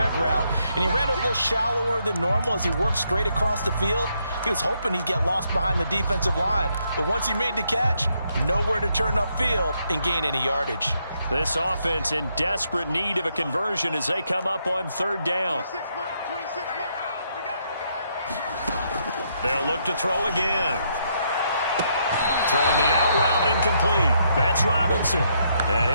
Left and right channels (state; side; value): inverted; both; correlation -0.75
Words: route, and he ran a little shallower than normal as he worked straight across the field. He was hoping he'd get lost behind the defensive line, but once he made the catch, nowhere to turn upfield and gain any yardage. This offense in desperate need of a conversion as they come up on 3rd down. 26 months. They'll look to throw again. Throwing the out route incomplete. That's Robinson. And